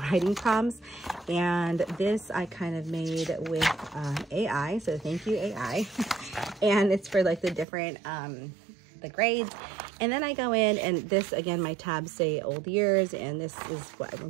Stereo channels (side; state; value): left; drops out; at 7.7 s